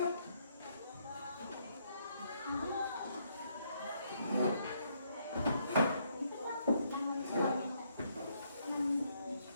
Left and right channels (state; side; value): inverted; both; correlation -0.73